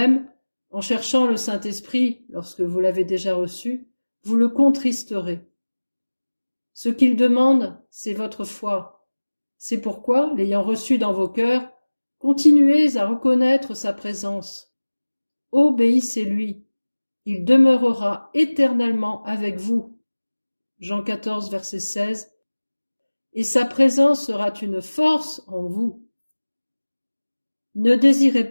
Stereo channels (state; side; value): inverted; both; correlation -1.00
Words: en cherchant le Saint-Esprit lorsque vous l'avez déjà reçu, vous le contristerez. Ce qu'il demande, c'est votre foi. C'est pourquoi, l'ayant reçu dans vos cœurs, continuez à reconnaître sa présence. Obéissez-lui. Il demeurera éternellement avec vous. Jean 14, verset 16. Et sa présence sera une force en vous. Ne